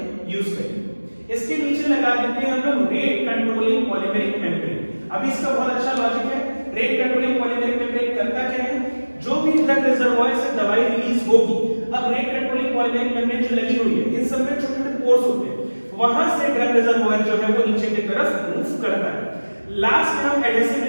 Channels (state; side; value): inverted; both; correlation -1.00